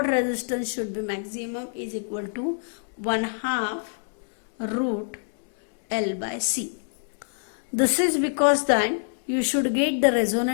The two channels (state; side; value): silent; right; digital silence